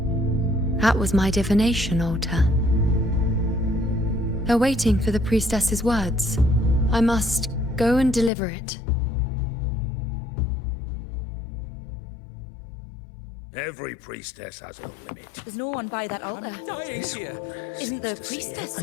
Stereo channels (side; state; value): right; drops out; at 8.3 s